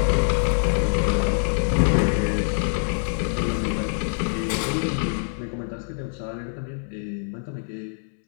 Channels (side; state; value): right; silent; digital silence